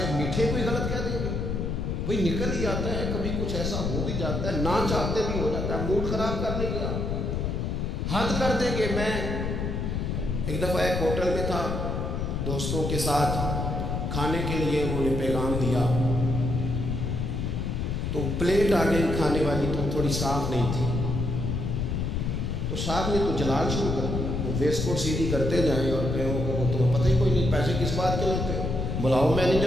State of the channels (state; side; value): noise; left; rumble, 1 dB below the sound